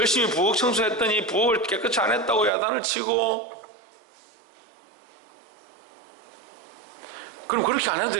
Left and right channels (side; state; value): left; drops out; at 2.5 s